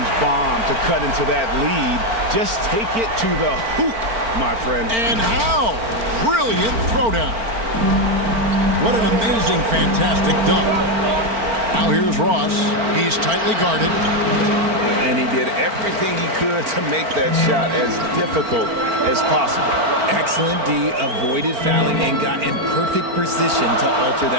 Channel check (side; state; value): left; late; 4.4 ms